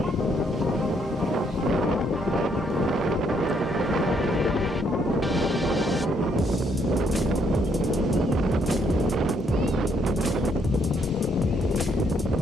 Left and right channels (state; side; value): normal; both; correlation 0.71